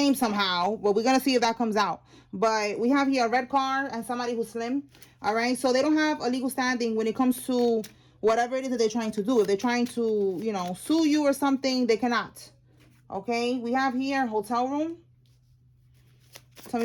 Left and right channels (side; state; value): both; identical; correlation 1.00